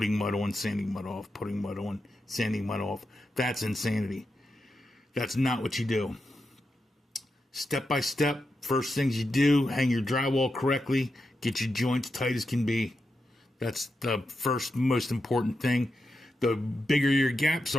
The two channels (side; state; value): both; normal; correlation 0.87